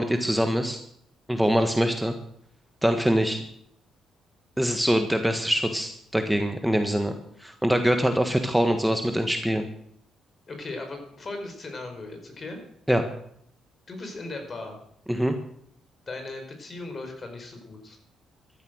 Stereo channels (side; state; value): both; normal; correlation 0.95